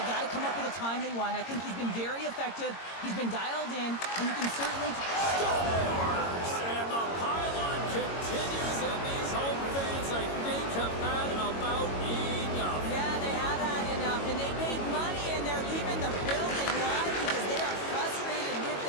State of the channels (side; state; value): right; late; 22 ms